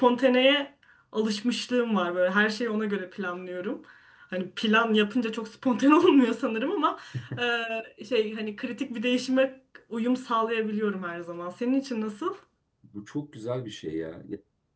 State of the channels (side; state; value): both; identical; correlation 1.00